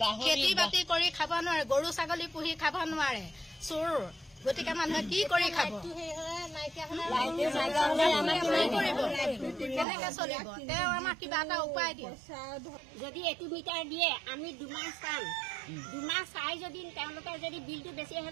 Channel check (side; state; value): left; drops out; at 9.9 s